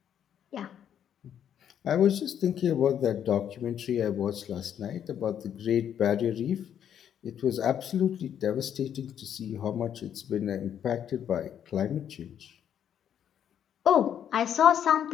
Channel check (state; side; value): quieter; right; 9.4 dB